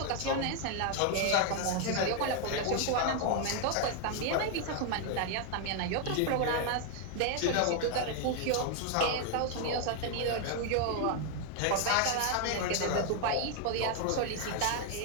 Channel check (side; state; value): both; different; correlation 0.00